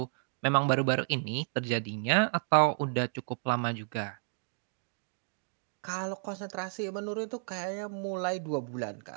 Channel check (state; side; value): silent; left; digital silence